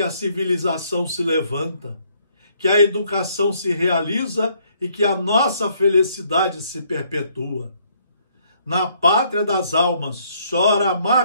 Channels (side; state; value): both; inverted; correlation -0.67